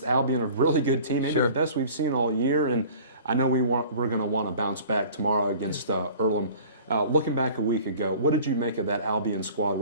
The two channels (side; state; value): both; inverted; correlation -0.46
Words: Albion, a really good team, maybe the best we've seen all year. And I know we're going to want to bounce back tomorrow against Earlham. Looking back a week ago, what did you make of that Albion squad,